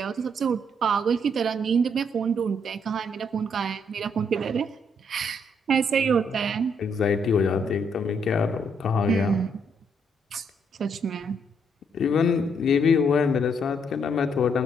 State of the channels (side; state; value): both; normal; correlation 0.72